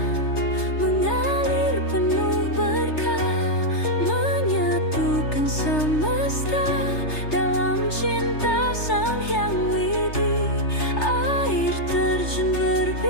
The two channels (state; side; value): late; right; 3.3 ms